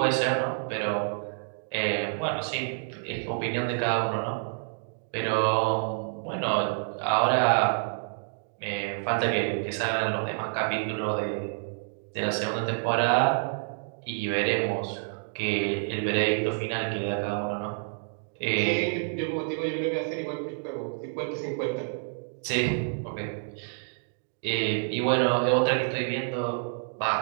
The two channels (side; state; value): left; silent; digital silence